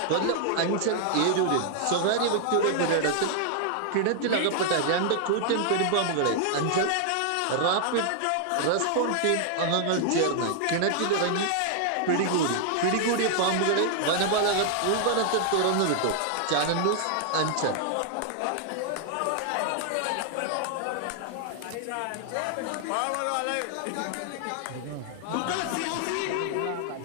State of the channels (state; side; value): different; both; correlation 0.00